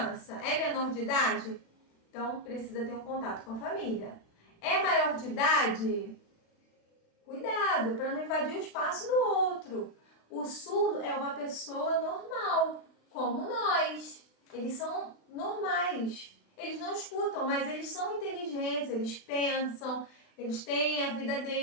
É menor de idade? Então, precisa ter um contato com a família. É maior de idade? Cuidado para não invadir o espaço do outro. O surdo é uma pessoa normal, como nós. Eles são normais. Eles não escutam, mas eles são inteligentes, eles pensam, eles têm a vida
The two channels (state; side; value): late; right; 36 ms